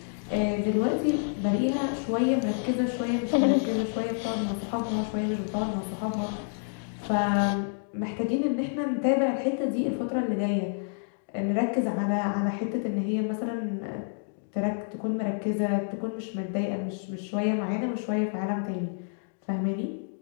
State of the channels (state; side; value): silent; right; digital silence